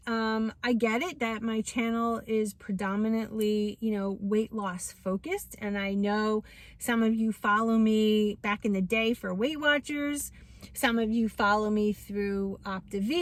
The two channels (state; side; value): identical; both; correlation 1.00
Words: I get it that my channel is predominantly, you know, weight loss focused. And I know some of you follow me back in the day for Weight Watchers. Some of you follow me through